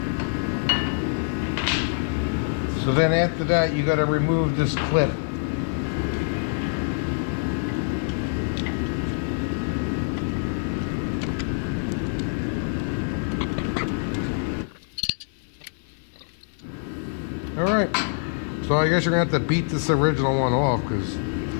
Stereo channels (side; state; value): right; silent; 59 dB below the other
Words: So then after that, you got to remove this clip. All right. So I guess you're going to have to beat this original one off because